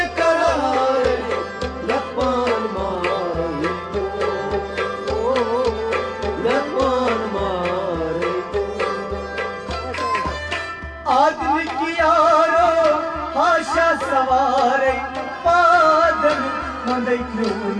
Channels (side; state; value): both; identical; correlation 1.00